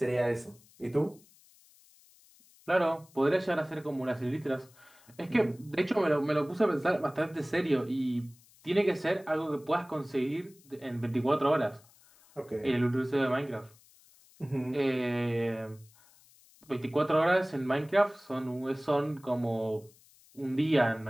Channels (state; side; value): noise; left; hiss, 28 dB below the sound